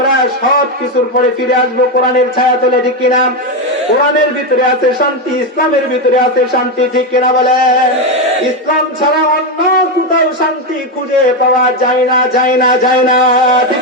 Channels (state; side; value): normal; both; correlation 0.09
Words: সব কিছুর পরে ফিরে আসবো কোরআনের ছায়া তলে, ঠিক কিনা? কোরআনের ভিতরে আছে শান্তি, ইসলামের ভিতরে আছে শান্তি, ঠিক কিনা বলেন? ইসলাম ছাড়া অন্য কোথাও শান্তি খুঁজে পাওয়া যায় না, যায় না, যায় না, ঠিক